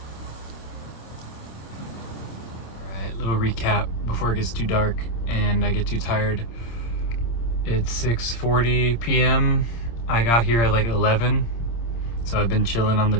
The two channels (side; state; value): right; late; 26 ms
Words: Alright, little recap before it gets too dark and I get too tired. It's 6:40 p.m. I got here at like 11, so I've been chilling on the